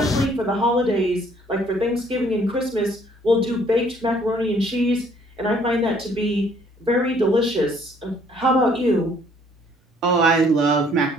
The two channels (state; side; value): normal; both; correlation 0.61